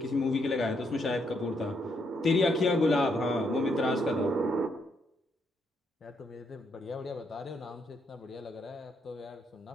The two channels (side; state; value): both; normal; correlation 0.76